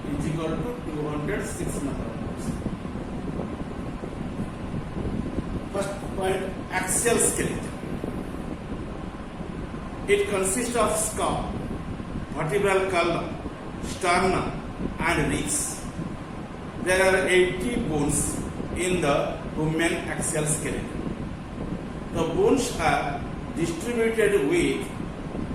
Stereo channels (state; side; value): identical; both; correlation 1.00